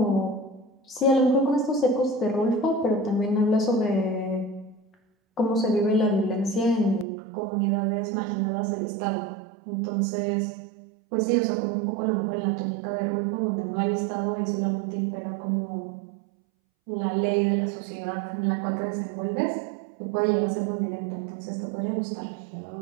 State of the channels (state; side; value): drops out; left; at 7.1 s